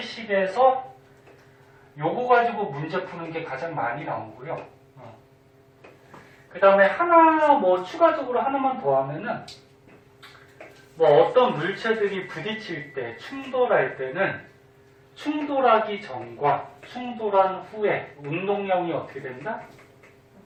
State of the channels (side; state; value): both; identical; correlation 1.00